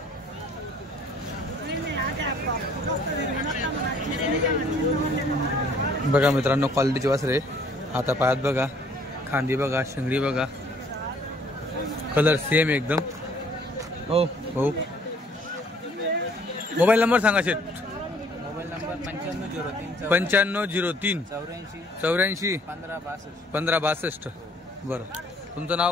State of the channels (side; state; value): both; normal; correlation 0.59